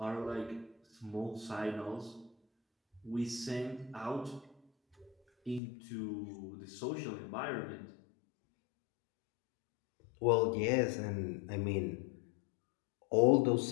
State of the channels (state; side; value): drops out; right; at 5.6 s